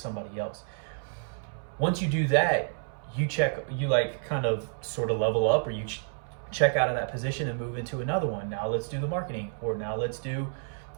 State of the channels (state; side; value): silent; left; 58 dB below the other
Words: else. Once you do that, you like kind of sort of level up, or you check out of that position and move into another one. Now let's do the marketing, or now let's do,